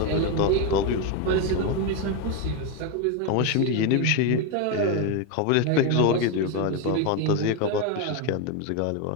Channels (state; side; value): different; both; correlation 0.02